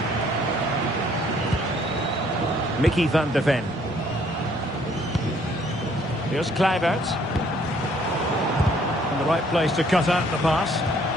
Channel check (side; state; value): both; normal; correlation 0.63